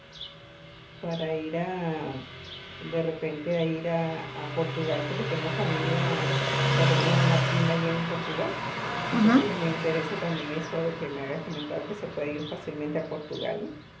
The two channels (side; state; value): both; identical; correlation 1.00